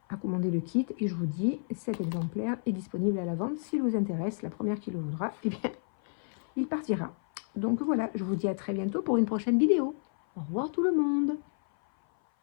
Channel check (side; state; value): right; silent; 56 dB below the other